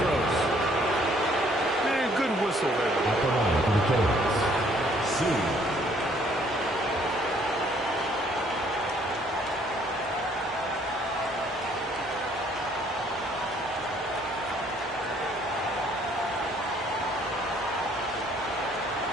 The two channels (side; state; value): both; normal; correlation 0.63